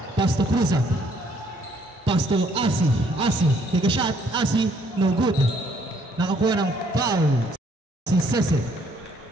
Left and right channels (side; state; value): both; normal; correlation 0.65